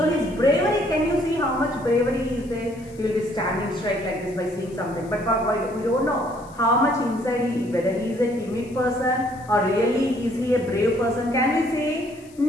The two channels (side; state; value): left; noise; hiss, 26 dB below the sound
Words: his bravery, can you see how much bravery is there? He will be standing straight like this by seeing something. But we don't know how much inside whether he is a timid person or really is he a brave person. Can we say?